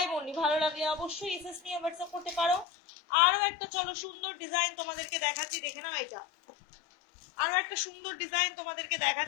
অনলি। ভালো লাগলে অবশ্যই এসএস নিয়ে হোয়াটসঅ্যাপ করতে পারো। আরো একটা চলো সুন্দর ডিজাইন তোমাদেরকে দেখাচ্ছি, দেখে নাও। এটা আরো একটা সুন্দর ডিজাইন তোমাদেরকে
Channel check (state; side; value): drops out; right; at 2.7 s